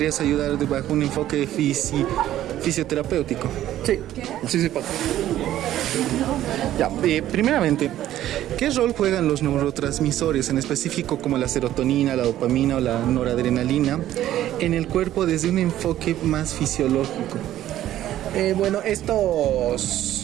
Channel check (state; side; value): quieter; left; 12.9 dB